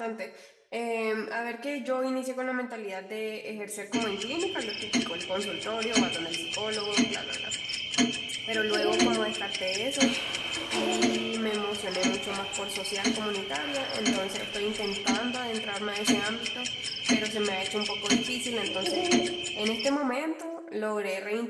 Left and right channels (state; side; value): identical; both; correlation 1.00